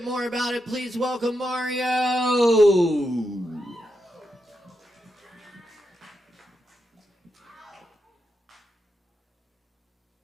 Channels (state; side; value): normal; both; correlation 0.85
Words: more about it. Please welcome Mario.